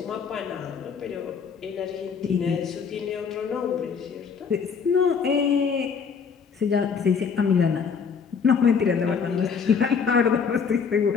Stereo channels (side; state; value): right; quieter; 6.2 dB